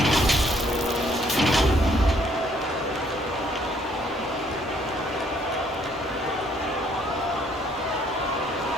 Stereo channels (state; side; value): normal; both; correlation 0.65